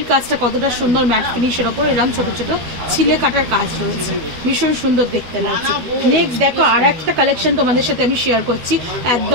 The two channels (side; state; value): left; late; 13 ms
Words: কাজটা কতটা সুন্দর, ম্যাট ফিনিশের ওপর এরকম ছোট ছোট ছিলে কাটার কাজ রয়েছে, ভীষণ সুন্দর দেখতে লাগছে। নেক্সট দেখো আর একটা কালেকশন তোমাদের সাথে আমি শেয়ার করছি,